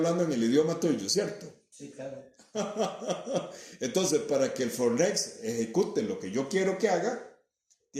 en el idioma tuyo, ¿cierto? Sí, claro. Entonces, para que el Fornex ejecute lo que yo quiero que haga,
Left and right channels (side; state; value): both; identical; correlation 1.00